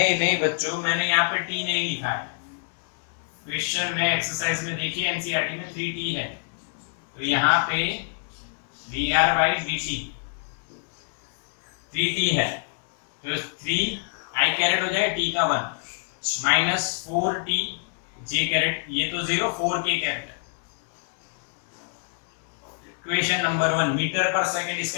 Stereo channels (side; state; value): right; silent; 61 dB below the other